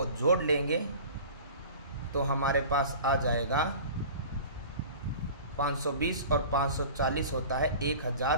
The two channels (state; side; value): inverted; both; correlation -0.40